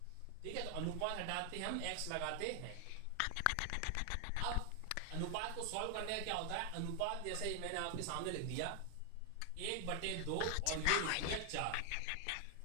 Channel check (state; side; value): different; both; correlation 0.00